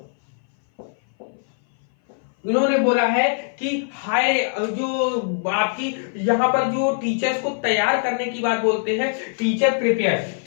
इन्होंने बोला है कि हायर जो आपकी यहाँ पर जो टीचर्स को तैयार करने की बात बोलते हैं, टीचर प्रिपेयर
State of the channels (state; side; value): silent; right; 59 dB below the other